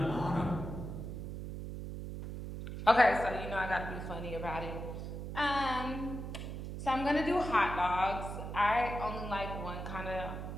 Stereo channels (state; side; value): noise; right; hum, 7 dB below the sound